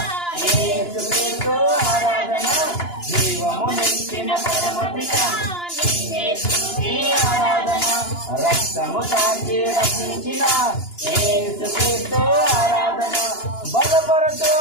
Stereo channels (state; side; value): late; right; 2.9 ms